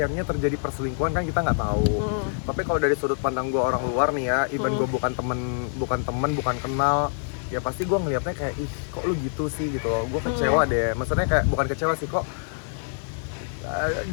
terjadi perselingkuhan, kan kita nggak tahu. Tapi kalau dari sudut pandang gue orang luar nih ya, even gue bukan temen kenal, ya pasti gue ngelihatnya kayak, ih kok lu gitu sih gitu loh. Gue kecewa deh, maksudnya kayak bukan kecewa sih, kok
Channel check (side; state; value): right; silent; 61 dB below the other